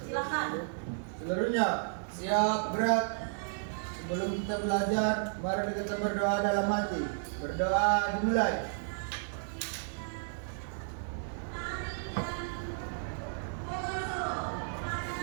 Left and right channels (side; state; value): left; silent; digital silence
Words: Silakan. Seluruhnya siap gerak. Sebelum kita belajar, mari kita berdoa dalam hati. Berdoa dimulai.